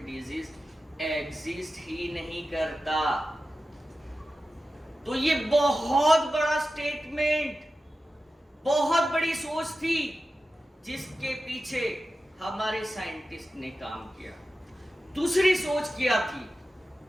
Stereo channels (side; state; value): both; normal; correlation 0.93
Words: डिजीज एग्जिस्ट ही नहीं करता। तो ये बहुत बड़ा स्टेटमेंट, बहुत बड़ी सोच थी जिसके पीछे हमारे साइंटिस्ट ने काम किया। दूसरी सोच क्या थी?